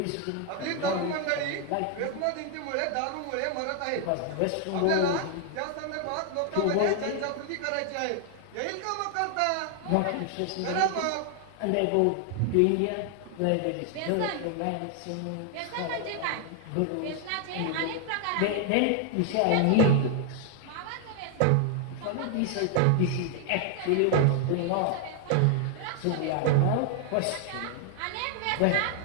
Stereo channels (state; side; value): different; both; correlation 0.00